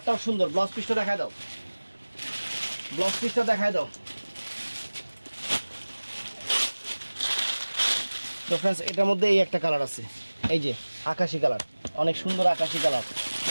সুন্দর। ব্লাউজ পিসটা দেখায় দাও, ব্লাউজ পিসটা দেখায় দাও। তো ফ্রেন্ডস এটার মধ্যে এই একটা কালার আছে, এই যে আকাশি কালার, অনেক সুন্দর আকাশি কালার।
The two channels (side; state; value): both; inverted; correlation -1.00